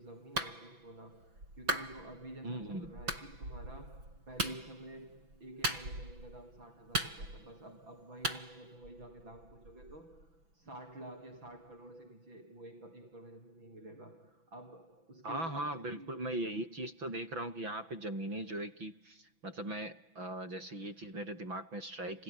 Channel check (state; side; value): late; left; 6.0 ms